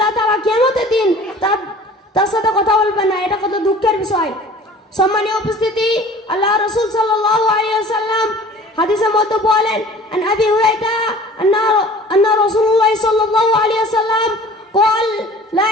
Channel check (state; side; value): normal; both; correlation 0.46